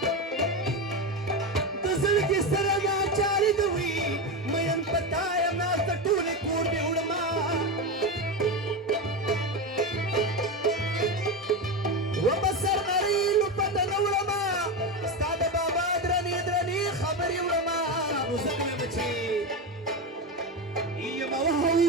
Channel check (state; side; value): normal; both; correlation 0.17